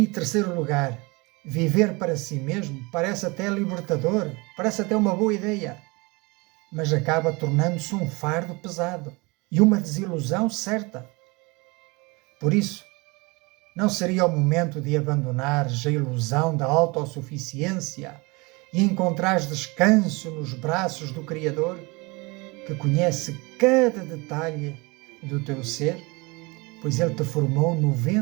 terceiro lugar, viver para si mesmo parece até libertador, parece até uma boa ideia, mas acaba tornando-se um fardo pesado e uma desilusão certa. Por isso, não seria o momento de abandonares a ilusão da autossuficiência e encontrares descanso nos braços do Criador, que conhece cada detalhe do teu ser, pois Ele te formou no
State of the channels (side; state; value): left; quieter; 26.1 dB